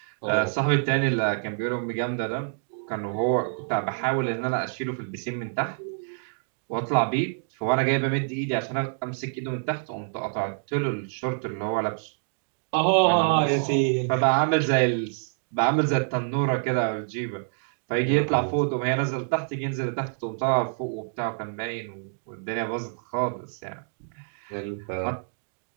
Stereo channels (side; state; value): left; silent; digital silence